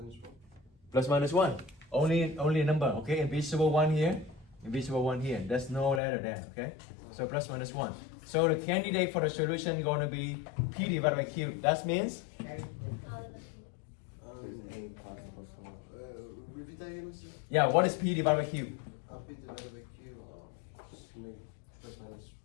Plus minus 1. Only a number. Okay, invisible 1 here. Invisible 1 here. There's no letter there. Okay. So plus minus 1. So the candidate for the solution is going to be P divided by Q. That means There's 8 possible solutions. Repeat that again, Mr. Yeah, what is P divided by Q? P divided by Q. Just make plus minus 1.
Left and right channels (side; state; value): right; drops out; at 6.0 s